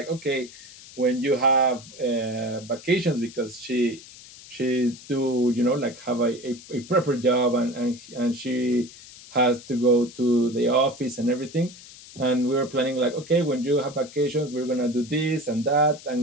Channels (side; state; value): left; noise; hiss, 18 dB below the sound